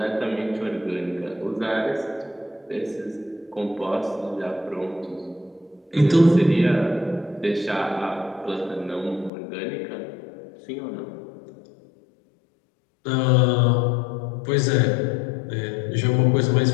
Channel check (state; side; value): drops out; right; at 9.3 s